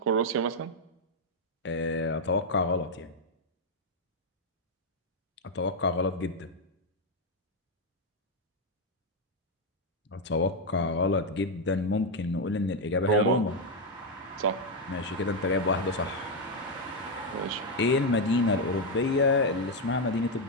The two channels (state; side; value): normal; both; correlation 0.03